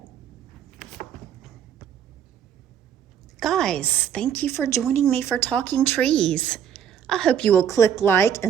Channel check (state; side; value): quieter; left; 8.8 dB